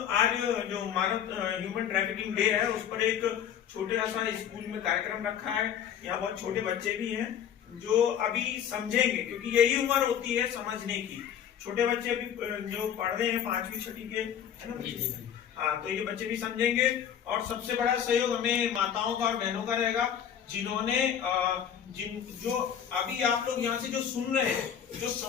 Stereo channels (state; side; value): quieter; right; 9.0 dB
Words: आज जो मानव ह्यूमन ट्रैफिकिंग डे है उस पर एक छोटा सा स्कूल में कार्यक्रम रखा है। यहाँ बहुत छोटे बच्चे भी हैं जो अभी समझेंगे, क्योंकि यही उम्र होती है समझने की। छोटे बच्चे अभी जो पढ़ रहे हैं 5वीं 6वीं के, है ना? हाँ, तो ये बच्चे भी समझेंगे। और सबसे बड़ा सहयोग हमें माताओं का और बहनों का रहेगा, जिन्होंने जो अभी आप लोग यहाँ से जो सुन रहे हैं, जो